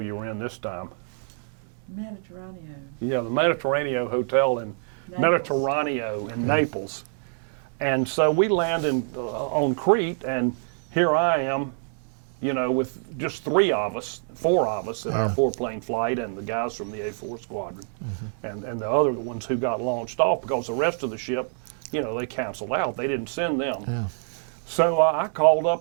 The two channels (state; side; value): silent; left; 61 dB below the other